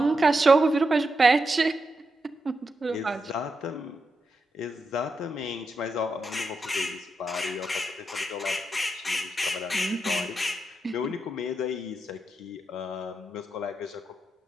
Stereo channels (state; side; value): normal; both; correlation 0.86